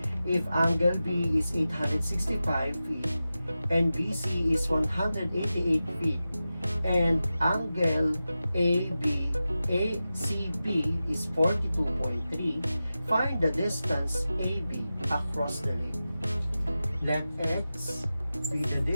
If angle B is 865 feet and BC is 188 feet and angle ACB is 42.3, find the distance AB across the lake. Let x be the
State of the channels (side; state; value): both; inverted; correlation -0.94